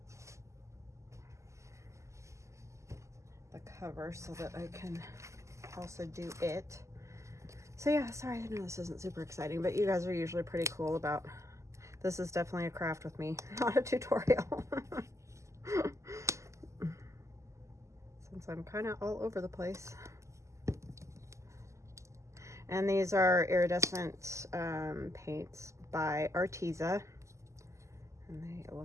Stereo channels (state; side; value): late; left; 0.14 ms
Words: the cover, so that I can also do it. So yeah, sorry, I know this isn't super exciting, but you guys are usually pretty cool about, this is definitely a craft with me, not a tutorial. Since I'm kind of all over the place. And these are iridescent paints by Arteza. And they